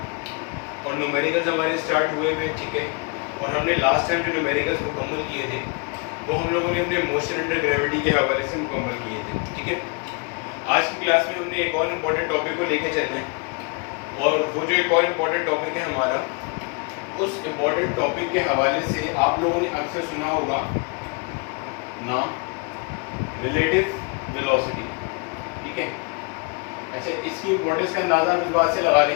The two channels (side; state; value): right; quieter; 31.2 dB